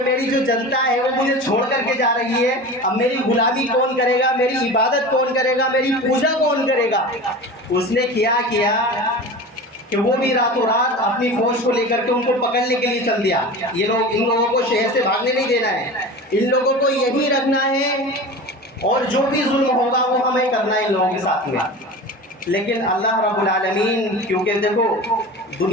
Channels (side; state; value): both; normal; correlation 0.33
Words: میری جو جنتا ہے وہ مجھے چھوڑ کر کے جا رہی ہے، اب میری غلامی کون کرے گا، میری عبادت کون کرے گا، میری پوجا کون کرے گا، اس نے کیا کہ وہ بھی راتوں رات اپنی فوج کو لے کر کے ان کو پکڑنے کے لیے چل دیا۔ یہ لوگ، ان لوگوں کو شہر سے بھاگنے نہیں دینا ہے، ان لوگوں کو یہی رکھنا ہے اور جو بھی ظلم ہوگا وہ ہمیں کرنا ہے ان لوگوں کے ساتھ میں۔ لیکن اللہ رب العالمین، کیونکہ دیکھو